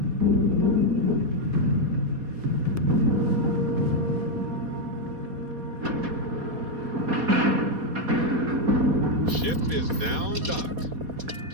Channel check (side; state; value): left; late; 4.2 ms